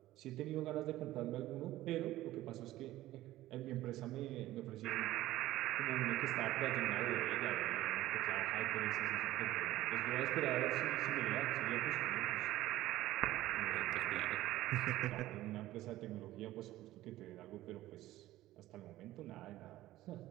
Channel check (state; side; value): quieter; left; 15.6 dB